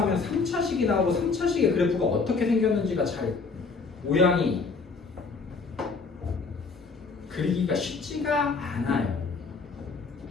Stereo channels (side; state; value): right; quieter; 4.5 dB